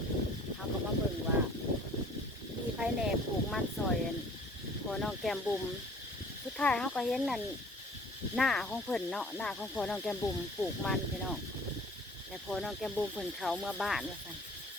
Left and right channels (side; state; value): both; normal; correlation 0.51